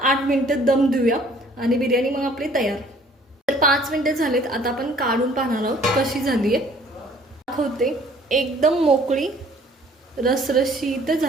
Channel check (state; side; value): normal; both; correlation 0.56